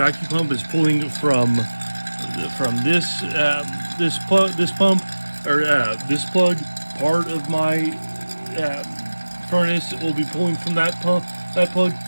pump is pulling from this pump, or this plug. Part of my furnace will be pulling from that plug,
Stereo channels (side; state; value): both; inverted; correlation -1.00